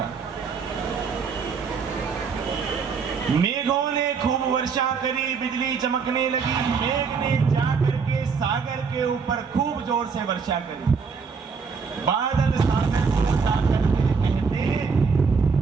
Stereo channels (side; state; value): left; quieter; 5.5 dB